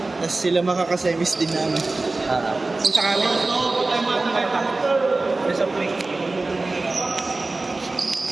Tapos sila makakasemis din namin. Ah. Kung sakali.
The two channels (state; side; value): quieter; left; 3.3 dB